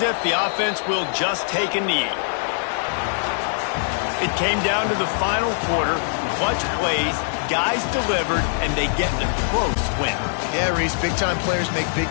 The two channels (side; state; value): right; silent; digital silence